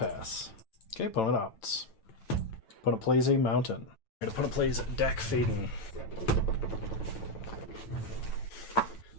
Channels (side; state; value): right; late; 9.0 ms